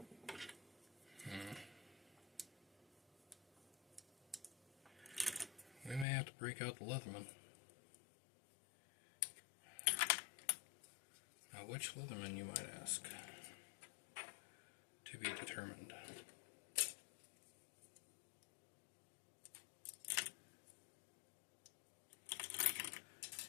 We may have to break out the Leatherman. Now, which Leatherman, you might ask? To be determined.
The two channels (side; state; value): right; drops out; at 6.1 s